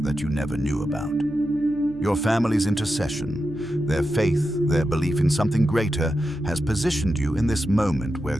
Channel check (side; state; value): left; noise; hum, 21 dB below the sound